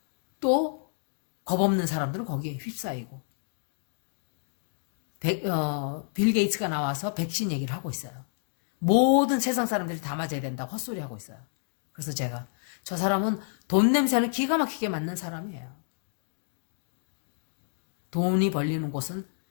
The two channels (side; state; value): right; silent; digital silence